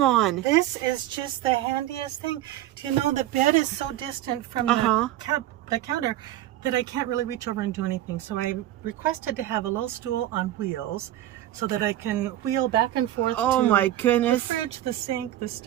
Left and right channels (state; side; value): quieter; left; 13.8 dB